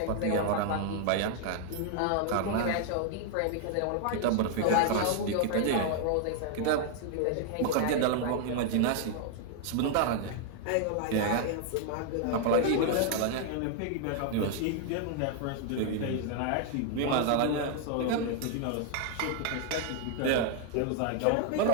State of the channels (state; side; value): different; both; correlation 0.00